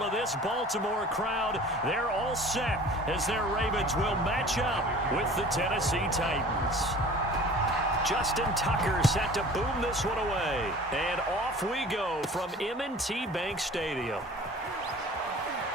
of this Baltimore crowd. They're all set as their Ravens will match up with the Tennessee Titans. Justin Tucker set to boom this one away. And off we go from M&T Bank Stadium.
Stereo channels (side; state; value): both; normal; correlation 0.44